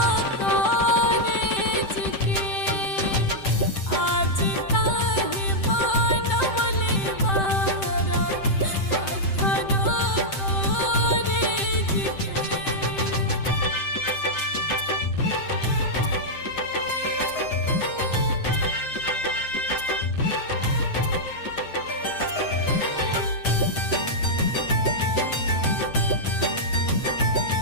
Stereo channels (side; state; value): right; late; 7.7 ms